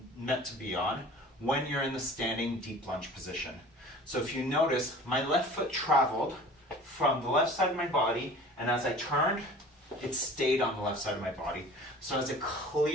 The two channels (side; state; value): both; normal; correlation 0.43